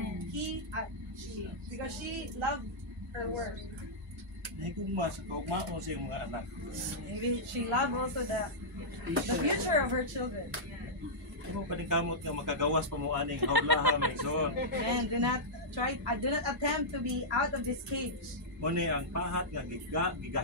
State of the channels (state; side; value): normal; both; correlation -0.10